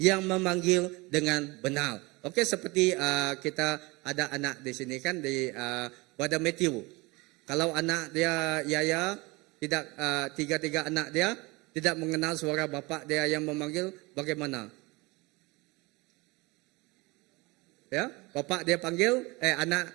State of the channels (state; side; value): quieter; left; 24.1 dB